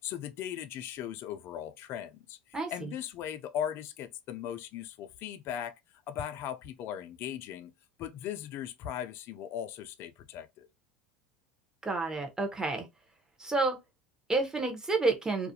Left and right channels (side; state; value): both; normal; correlation 0.51